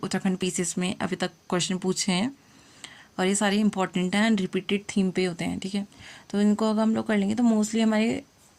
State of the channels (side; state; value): both; identical; correlation 1.00